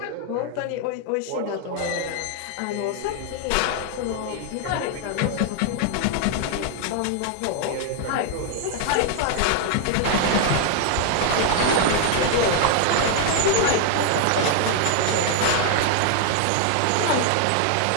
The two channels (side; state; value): both; different; correlation 0.00